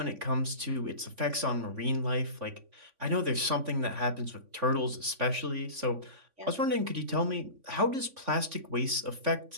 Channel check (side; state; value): left; late; 3.5 ms